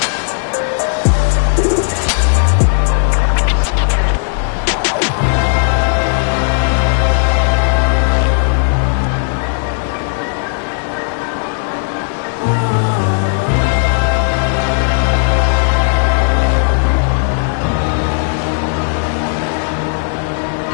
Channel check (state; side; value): silent; right; digital silence